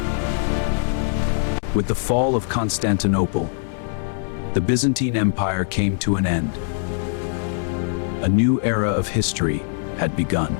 With the fall of Constantinople, the Byzantine Empire came to an end. A new era of history had begun.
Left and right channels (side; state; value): right; silent; digital silence